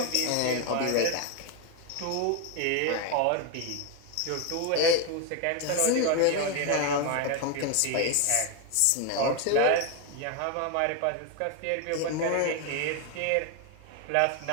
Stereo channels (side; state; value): both; different; correlation 0.01